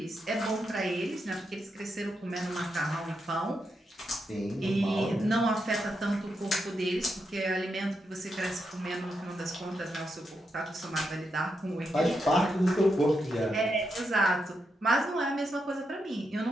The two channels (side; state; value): both; normal; correlation 0.84